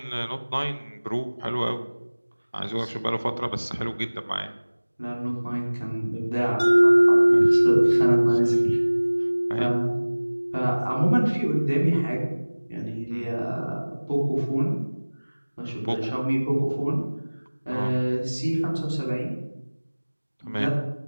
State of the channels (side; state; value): both; inverted; correlation -1.00